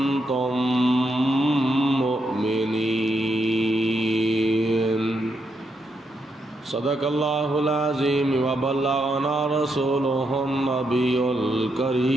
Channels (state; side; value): normal; both; correlation 0.80